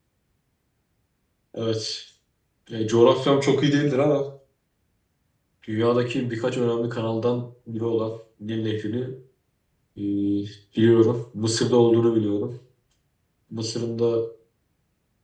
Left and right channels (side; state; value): both; identical; correlation 1.00